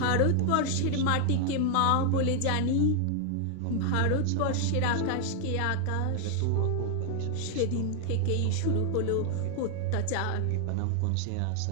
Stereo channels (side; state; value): both; different; correlation 0.00